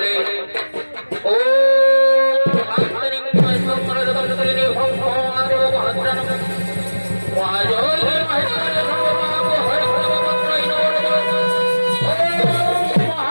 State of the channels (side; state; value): both; inverted; correlation -1.00